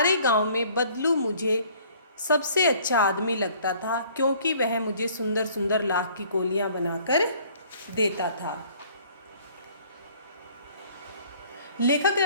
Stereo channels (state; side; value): inverted; both; correlation -0.56